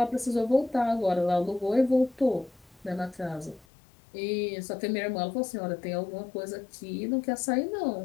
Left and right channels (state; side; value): drops out; right; at 3.7 s